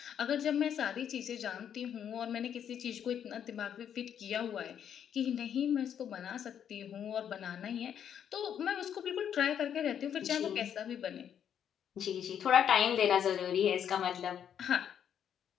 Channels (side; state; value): right; quieter; 8.9 dB